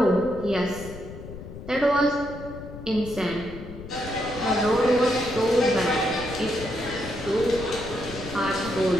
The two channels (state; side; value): noise; left; rumble, 13 dB below the sound